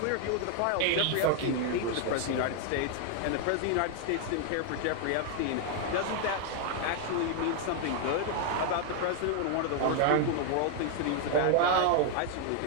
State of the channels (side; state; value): both; different; correlation 0.00